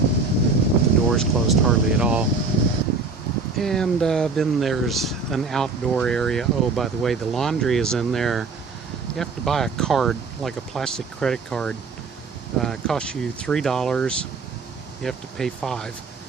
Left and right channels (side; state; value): left; quieter; 4.3 dB